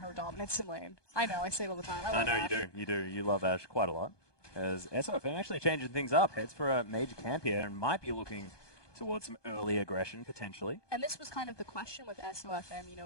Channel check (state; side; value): late; right; 1.2 ms